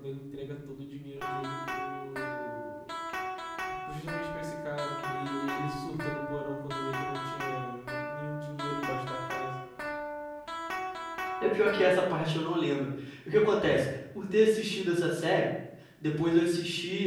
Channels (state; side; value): identical; both; correlation 1.00